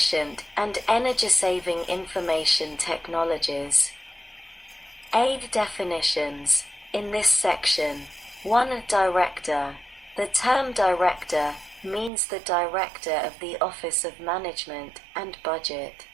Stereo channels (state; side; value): drops out; left; at 12.1 s